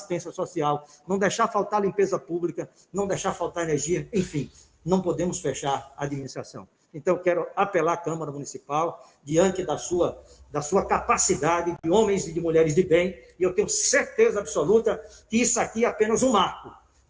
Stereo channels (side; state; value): both; identical; correlation 1.00